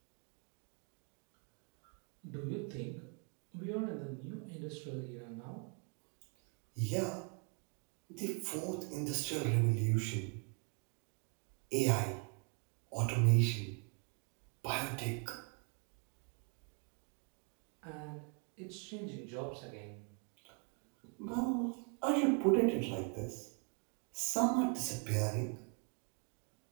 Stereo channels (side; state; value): left; quieter; 38.9 dB